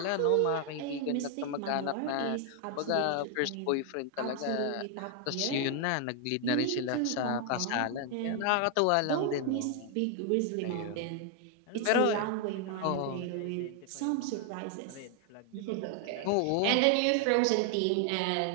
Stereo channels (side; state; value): both; different; correlation 0.00